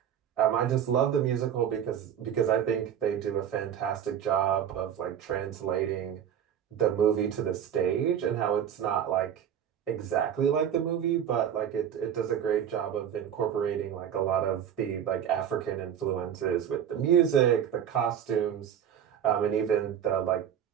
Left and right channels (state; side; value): quieter; left; 9.2 dB